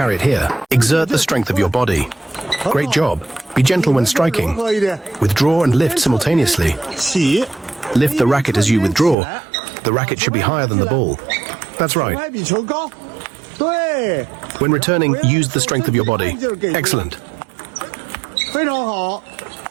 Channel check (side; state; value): left; drops out; at 9.2 s